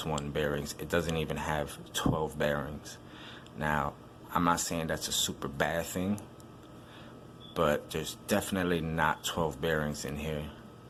bearings. It doesn't even have 12 bearings. Now, I'm not saying that's a super bad thing, but there's definitely not 12 bearings in here.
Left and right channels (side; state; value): both; identical; correlation 1.00